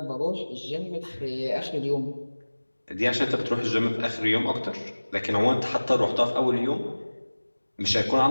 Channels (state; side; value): inverted; both; correlation -1.00